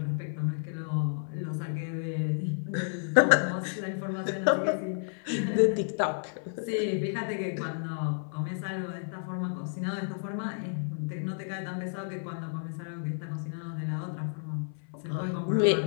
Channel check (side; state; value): right; silent; 57 dB below the other